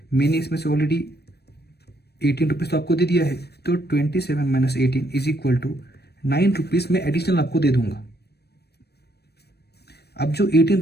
मैंने इसमें से ऑलरेडी 18 रुपीज़ तो आपको दे दिया है, तो 27 minus 18 is equal to 9 rupees मैं एडिशनल आपको दे दूंगा। अब जो 18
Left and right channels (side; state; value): right; late; 0.47 ms